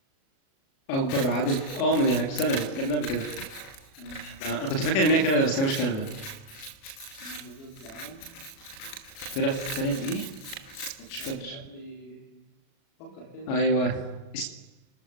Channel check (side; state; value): right; late; 37 ms